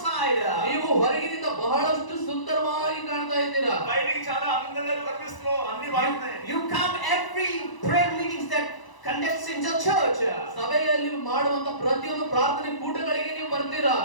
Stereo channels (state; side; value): late; right; 1.0 ms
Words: ನೀವು ಹೊರಗಿನಿಂದ ಬಹಳಷ್ಟು ಸುಂದರವಾಗಿ ಕಾಣ್ತಾ ಇದ್ದೀರಾ. బయటికి చాలా అందంగా కనిపిస్తున్నావు, అన్ని బాగున్నాయి. You come every prayer meetings that conducts in the church. ಸಭೆಯಲ್ಲಿ ಮಾಡುವಂತ ಪ್ರತಿಯೊಂದು ಪ್ರಾರ್ಥನೆ ಕೂಟಗಳಿಗೆ ನೀವು ಬರ್ತೀರಾ.